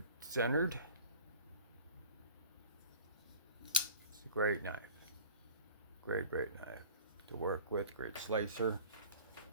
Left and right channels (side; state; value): both; inverted; correlation -0.39